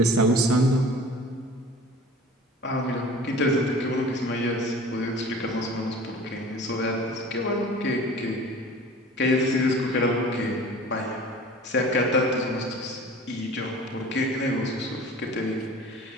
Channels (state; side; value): normal; both; correlation 0.43